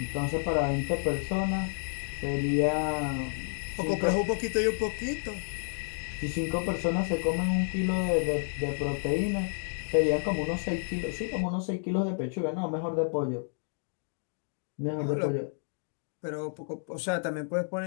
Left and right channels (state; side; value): silent; right; digital silence